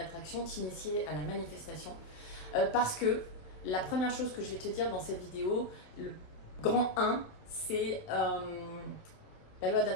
t'initier à la manifestation, parce que la première chose que je vais te dire dans cette vidéo, le grand 1, c'est la loi de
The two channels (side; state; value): right; late; 27 ms